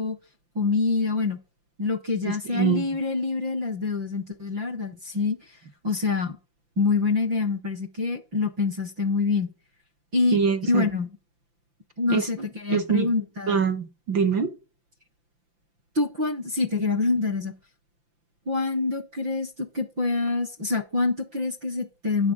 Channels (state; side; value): late; left; 5.8 ms